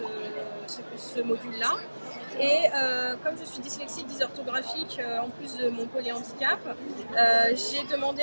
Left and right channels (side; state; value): both; inverted; correlation -1.00